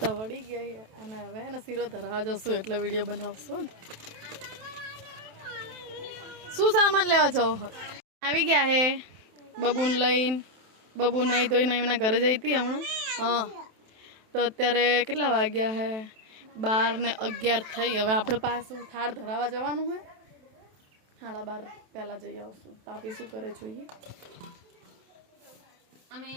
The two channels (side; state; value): left; late; 27 ms